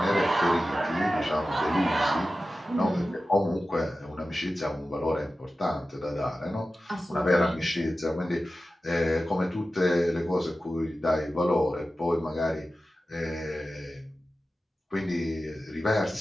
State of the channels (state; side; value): normal; both; correlation 0.94